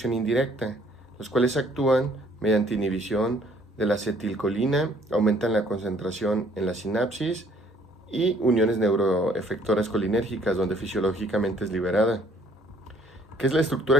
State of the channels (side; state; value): both; normal; correlation 0.61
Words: indirecta, los cuales actúan mediante inhibición de la acetilcolina, aumentan la concentración en la sinapsis y uniones neuroefectoras colinérgicas donde fisiológicamente es liberada. ¿Qué es la